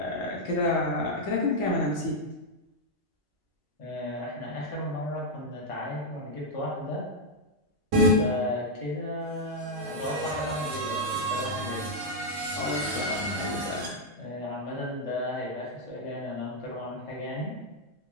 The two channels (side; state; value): both; normal; correlation -0.03